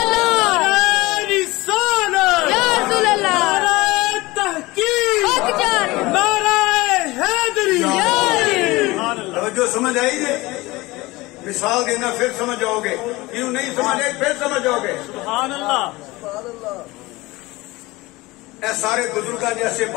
جو سمجھ آئی جی مثال دینا پھر سمجھ آؤ گے، کیوں نہیں سمجھ آئی پھر سمجھ آؤ گے. سبحان اللہ. اے سارے بزرگاں جیسے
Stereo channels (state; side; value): quieter; right; 20.9 dB